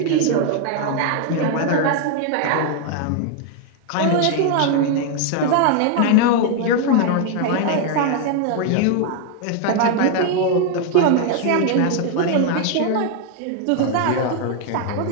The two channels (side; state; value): both; different; correlation 0.00